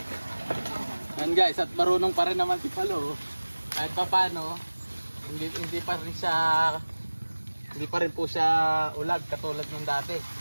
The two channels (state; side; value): inverted; both; correlation -1.00